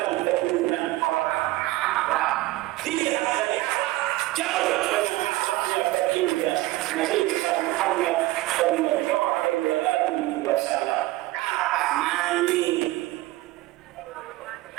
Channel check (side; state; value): left; quieter; 18.4 dB